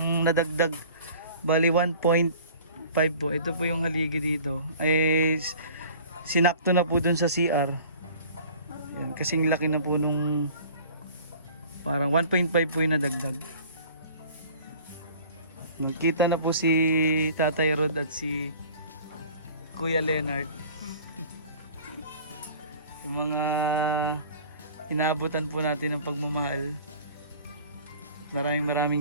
nadagdag. Bali 1.5 po. Ito po yung haligi dito. Ay sinakto na po dun sa CR. Ayan, kasing laki na po nung parang 1.5 po yung nadagdag. Nagkita na po si Tatay Rod at si Kuya Leonard. Yung mga inaabutan po natin ng pagmamahal.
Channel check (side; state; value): both; inverted; correlation -0.47